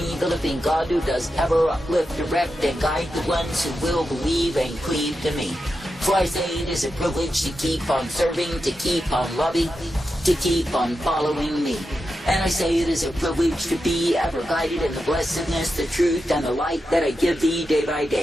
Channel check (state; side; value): normal; both; correlation 0.89